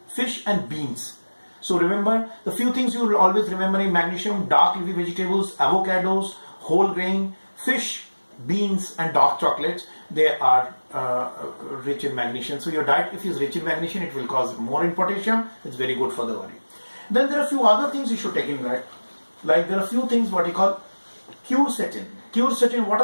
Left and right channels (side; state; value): both; inverted; correlation -1.00